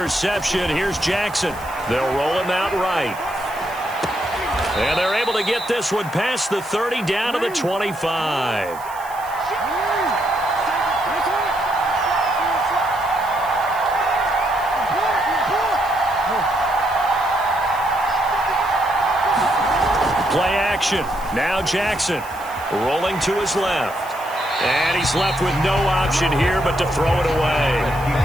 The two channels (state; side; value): noise; right; hiss, 20 dB below the sound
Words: here's Jackson. They'll roll him out right. And they're able to get this one past the 30 down to the 25. Play action. Now Jackson rolling to his left. And he's left with no option here but to throw it away.